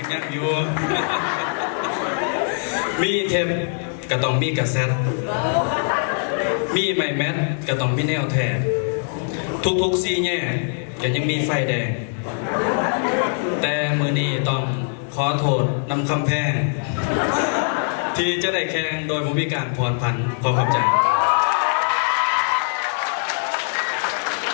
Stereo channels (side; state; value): right; silent; 64 dB below the other